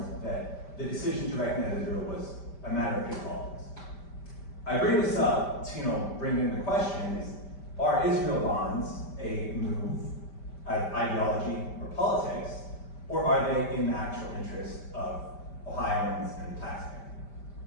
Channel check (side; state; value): right; late; 5.1 ms